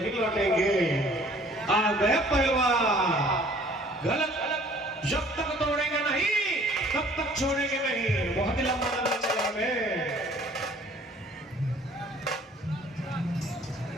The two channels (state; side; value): normal; both; correlation 0.54